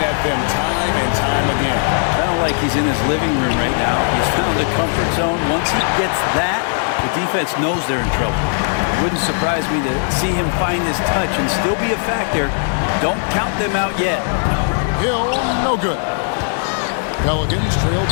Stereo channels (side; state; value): right; silent; 58 dB below the other